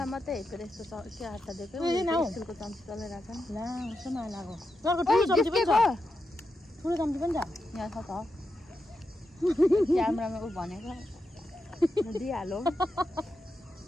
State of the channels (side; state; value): both; normal; correlation 0.87